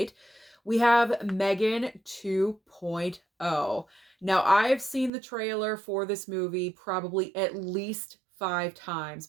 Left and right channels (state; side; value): drops out; left; at 5.1 s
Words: we have Megan 2.0. Now, I've seen the trailer for this movie probably at least 5 times,